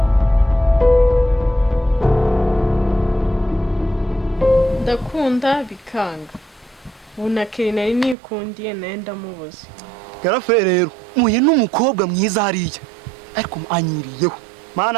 bikanga bunakeri nari nikundiye naye ndamubuze Garafe rero muye n'umukobwa mwiza hariya ariko anyiriyeho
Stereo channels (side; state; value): left; drops out; at 8.2 s